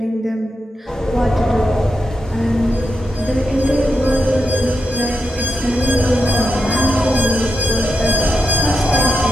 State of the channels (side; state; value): both; normal; correlation 0.86